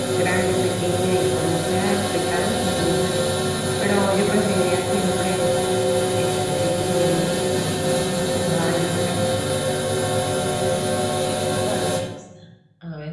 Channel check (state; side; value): identical; both; correlation 1.00